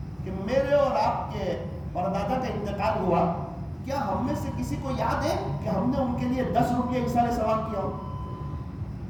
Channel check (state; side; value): identical; both; correlation 1.00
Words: کہ میرے اور آپ کے پردادا کا انتقال ہوا, کیا ہم میں سے کسی کو یاد ہے کہ ہم نے ان کے لیے 10 روپیہ ایسال ثواب کیا ہو؟